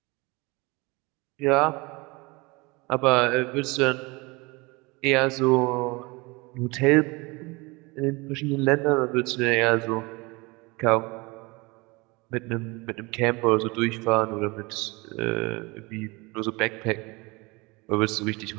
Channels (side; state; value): left; quieter; 25.4 dB